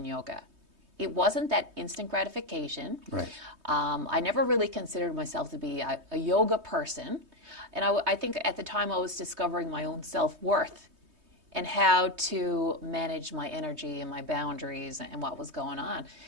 Yoga. It wasn't that instant gratification. Right. I never really considered myself to be a yoga person. And I think at the time I was discovering my own self-worth and how to manage my energy and my boundaries and what was going on.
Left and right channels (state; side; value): late; left; 3.2 ms